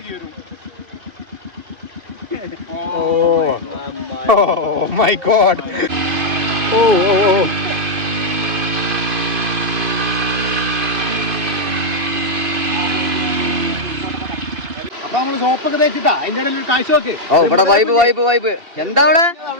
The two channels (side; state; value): left; late; 2.6 ms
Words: Oh my God. ഓ ഓ ഓ അപ്പൊ നമ്മള് സോപ്പൊക്കെ തേച്ചിട്ടാ അതിന്റെ ഇടയിൽ ഒരു കാഴ്ച നോക്ക്. ഓ ഇവിടെ വൈബ് വൈബ് വൈബ്. എന്താ അവിടെ